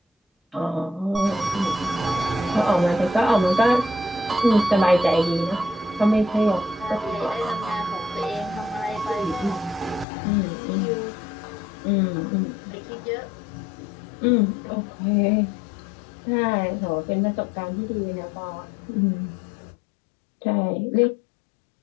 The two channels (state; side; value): drops out; right; at 10.1 s